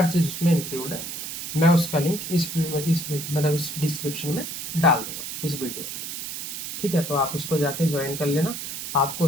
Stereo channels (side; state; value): right; noise; hiss, 7 dB below the sound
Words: चीज़ उसमें इंक्लूड है। मैं उसका लिंक इस डिस्क्रिप्शन में डाल दूंगा इस वीडियो के। ठीक है, तो आप उसको जाके ज्वाइन कर लेना, आपको